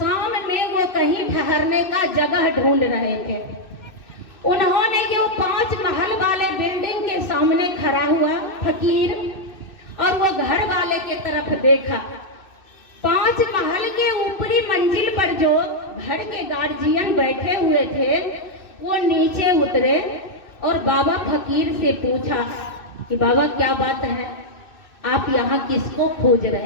में वो कहीं ठहरने का जगह ढूंढ रहे थे। उन्होंने ये 5 महल वाले बिल्डिंग के सामने खड़ा हुआ फकीर और वो घर वाले के तरफ देखा। 5 महल के ऊपरी मंजिल पर जो घर के गार्जियन बैठे हुए थे वो नीचे उतरे और बाबा फकीर से पूछा कि बाबा क्या बात है, आप यहाँ किसको खोज रहे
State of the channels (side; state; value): right; late; 2.6 ms